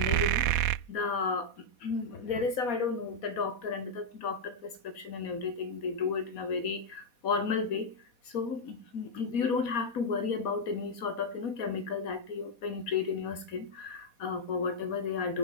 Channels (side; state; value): right; late; 4.2 ms